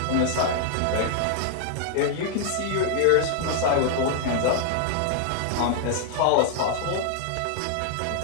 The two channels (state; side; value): different; both; correlation 0.00